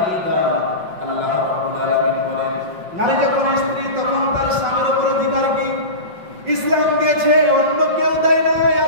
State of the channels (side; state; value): left; late; 5.4 ms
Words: আল্লাহ রাব্বুল আলামিন বলেন নারী যখন স্ত্রী তখন তার স্বামীর উপর অধিকার কি ইসলাম দিয়েছে, অন্য কেউ দেয় নাই।